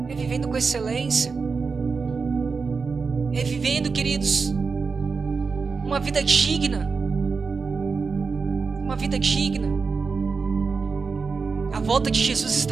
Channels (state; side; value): quieter; left; 4.9 dB